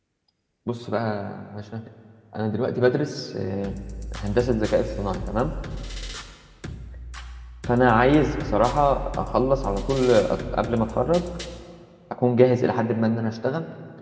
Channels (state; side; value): identical; both; correlation 1.00